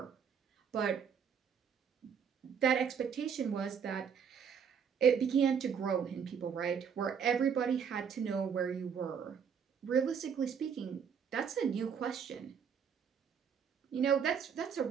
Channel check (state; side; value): quieter; left; 7.1 dB